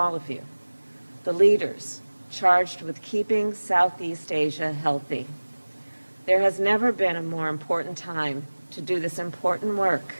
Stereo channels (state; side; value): inverted; both; correlation -1.00